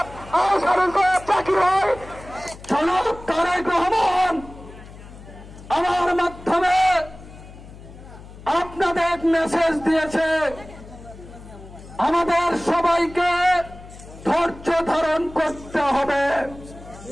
জাকির ভাই জনাব তারেক রহমান আমার মাধ্যমে আপনাদের মেসেজ দিয়েছে, আমাদের সবাইকে ধৈর্য ধারণ করতে হবে।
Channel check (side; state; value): left; noise; hum, 17 dB below the sound